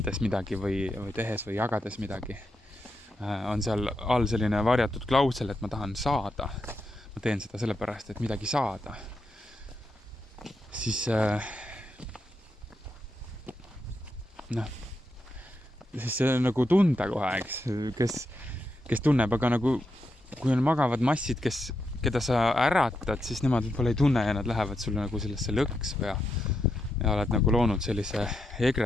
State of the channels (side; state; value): both; normal; correlation 0.84